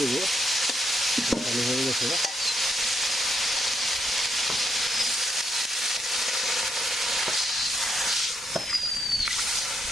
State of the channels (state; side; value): normal; both; correlation 0.77